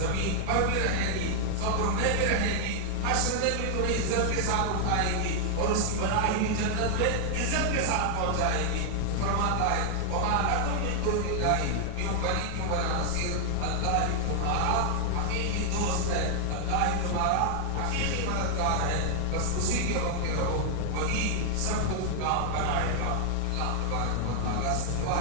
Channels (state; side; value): different; both; correlation 0.00